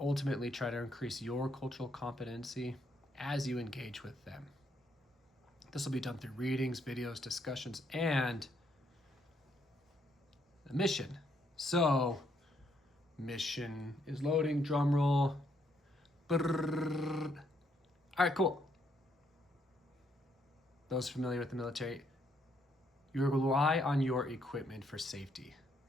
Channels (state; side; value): normal; both; correlation 0.73